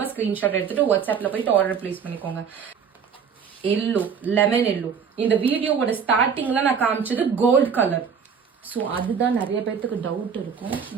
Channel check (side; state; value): left; quieter; 6.7 dB